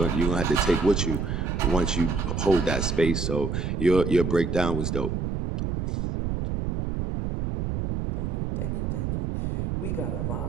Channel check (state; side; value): noise; right; rumble, 2 dB below the sound